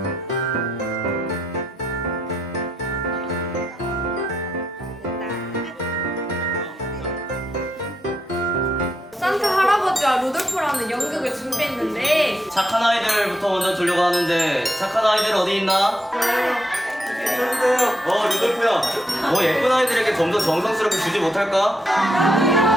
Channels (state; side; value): normal; both; correlation 0.80